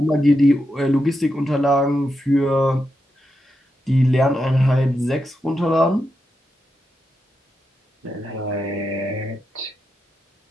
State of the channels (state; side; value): normal; both; correlation 0.86